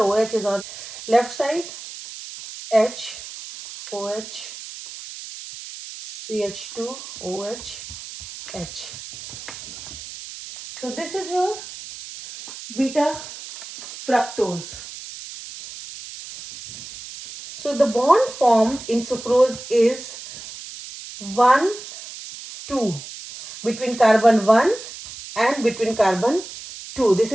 is on left side, H, OH. CH2OH H. So this is your beta fructose. So the bond formed in sucrose is 1 2 between carbon 1 and between carbon 2. This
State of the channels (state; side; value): noise; right; hiss, 13 dB below the sound